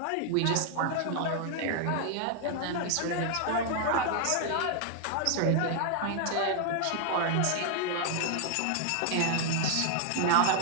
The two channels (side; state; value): both; different; correlation 0.00